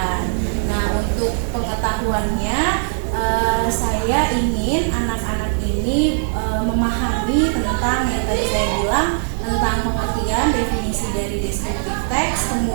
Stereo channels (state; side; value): silent; left; 66 dB below the other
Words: Nah, untuk pengetahuannya saya ingin anak-anak ini memahami tentang yang tadi saya bilang tentang pengertian definisi dari descriptive text,